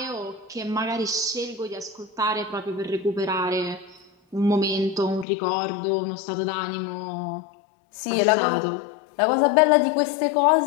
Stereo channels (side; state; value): right; drops out; at 5.2 s